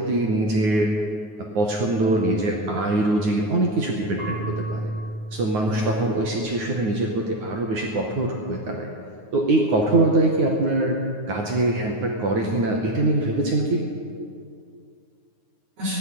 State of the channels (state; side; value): late; left; 9.5 ms